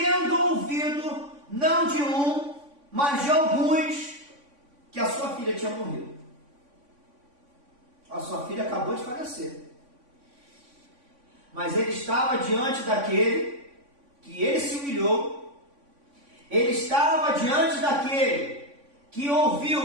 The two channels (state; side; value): late; left; 3.5 ms